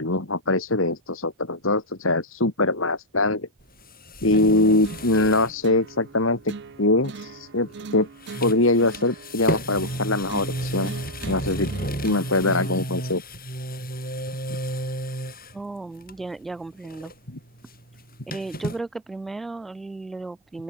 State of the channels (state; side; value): normal; both; correlation -0.05